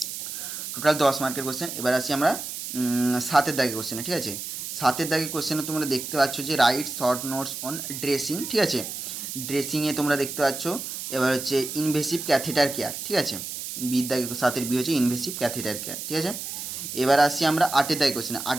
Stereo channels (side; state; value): right; noise; hiss, 7 dB below the sound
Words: টোটাল 10 মার্কের কোশ্চেন। এবার আসি আমরা 7-এর দাগে কোশ্চেনে, ঠিক আছে। 7-এর দাগে কোশ্চেনে তোমরা দেখতে পাচ্ছ যে right short notes on dressing, ঠিক আছে। ড্রেসিংয়ে তোমরা দেখতে পাচ্ছ এবার হচ্ছে ইনভেসিভ ক্যাথেটার কেয়ার, ঠিক আছে। বির দাগে 7-এর বি হচ্ছে ইনভেসিভ ক্যাথেটার কেয়ার, ঠিক আছে। এবার আসি আমরা 8-এর দাগে কোশ্চেনে।